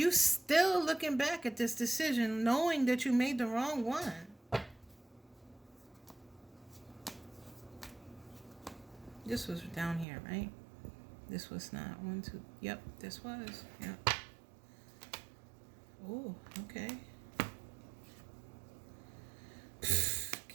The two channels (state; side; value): drops out; left; at 10.1 s